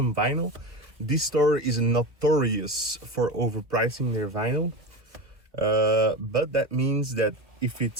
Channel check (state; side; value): late; left; 1.4 ms